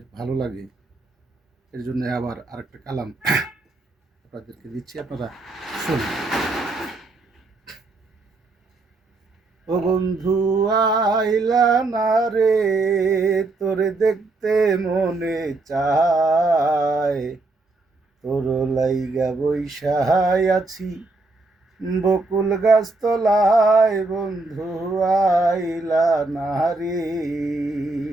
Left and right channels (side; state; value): left; quieter; 3.3 dB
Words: ভালো লাগে, এর জন্য আবার আরেকটা কালাম আপনাদেরকে দিচ্ছি, আপনারা শুনুন। ও বন্ধু আইলা না রে, তোরে দেখতে মনে চায়, তোর লাইগা বৈশায় আছি বকুল গাছ তলায়, বন্ধু আইলা না রে।